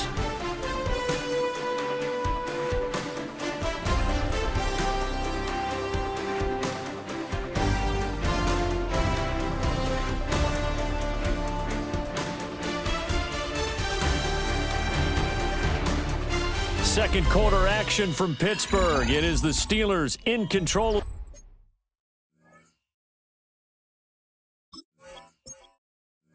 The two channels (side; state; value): both; identical; correlation 1.00